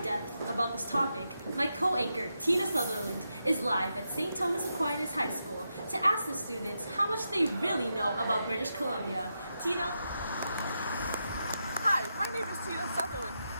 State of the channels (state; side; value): inverted; both; correlation -0.86